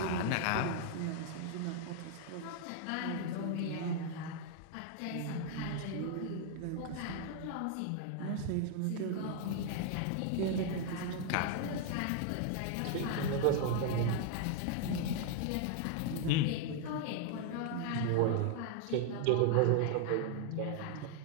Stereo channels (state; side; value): different; both; correlation 0.00